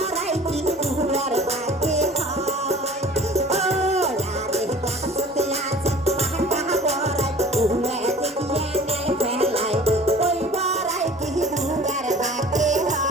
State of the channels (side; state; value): both; normal; correlation 0.46